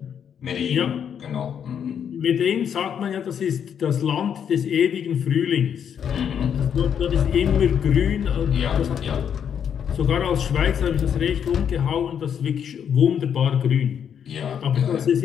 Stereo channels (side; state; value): right; quieter; 8.2 dB